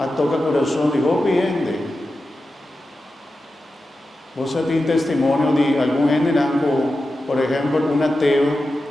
toca el corazón de vos viendo. Vos tenés testimonio de algún gente, por ejemplo, un ateo,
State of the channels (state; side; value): normal; both; correlation 0.92